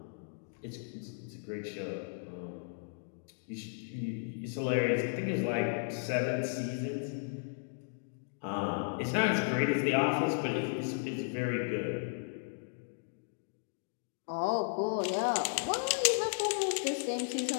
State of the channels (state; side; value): silent; right; digital silence